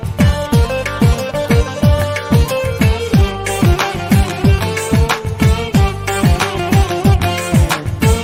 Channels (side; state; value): both; identical; correlation 1.00